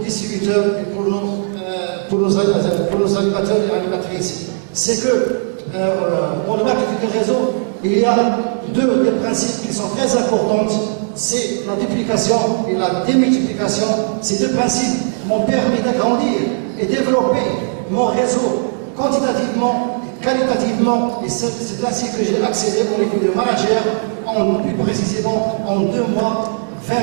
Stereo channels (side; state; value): left; silent; digital silence